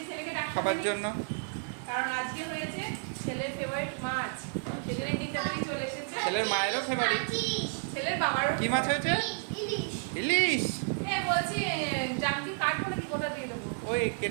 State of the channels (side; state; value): left; silent; digital silence